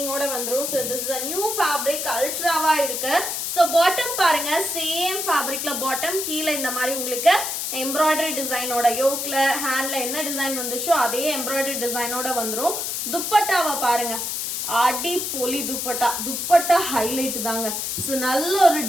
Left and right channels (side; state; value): left; noise; hiss, 2 dB below the sound